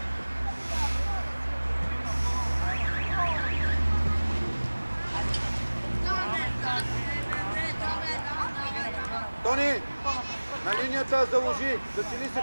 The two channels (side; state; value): both; inverted; correlation -1.00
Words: Тони, на линията заложи, засили се